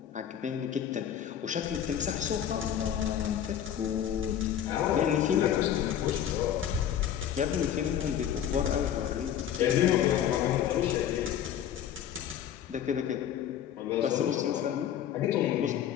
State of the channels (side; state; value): right; quieter; 9.9 dB